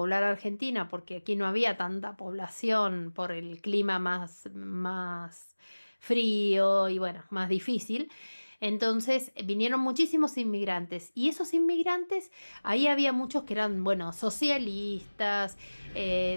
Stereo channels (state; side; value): inverted; both; correlation -1.00